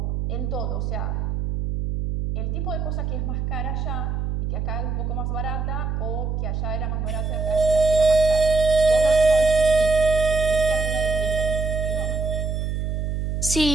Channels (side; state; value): right; noise; hum, 2 dB below the sound